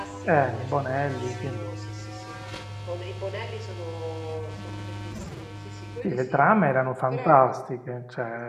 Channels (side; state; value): both; identical; correlation 1.00